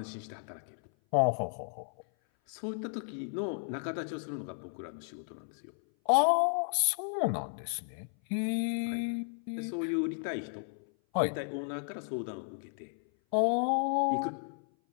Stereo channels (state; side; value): silent; right; 55 dB below the other